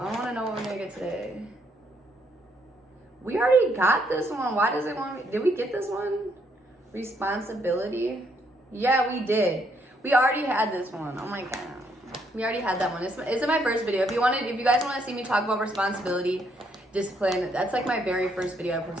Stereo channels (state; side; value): normal; both; correlation 0.72